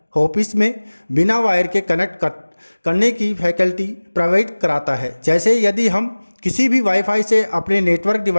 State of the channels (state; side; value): inverted; both; correlation -1.00